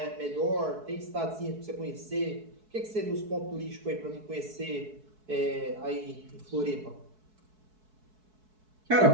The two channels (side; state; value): left; late; 4.6 ms